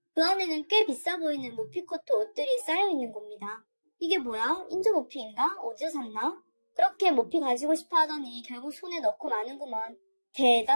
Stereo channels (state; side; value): inverted; both; correlation -1.00